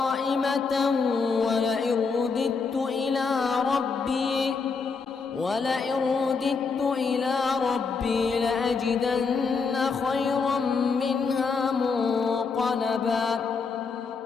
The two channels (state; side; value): quieter; right; 4.9 dB